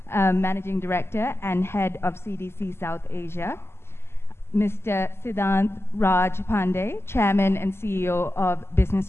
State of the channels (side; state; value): right; late; 0.12 ms